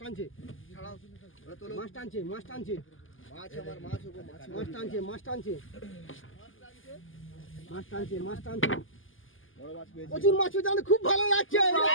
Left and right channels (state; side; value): late; right; 0.58 ms